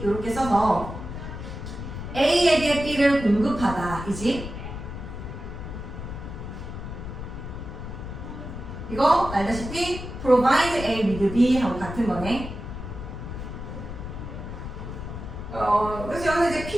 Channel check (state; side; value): noise; left; rumble, 8 dB below the sound